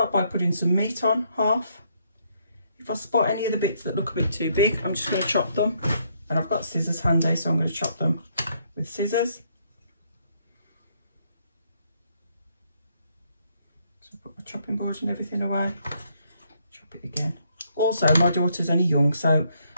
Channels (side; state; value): both; inverted; correlation -0.71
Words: by putting some meat on, half. If I spot any of the bits that look a bit too big, I'm just going to chop them. And I've got scissors handy, so I'm going to chop them with scissors. So put my chopping board and everything away. Chop it again. Also, my daughter's only young, so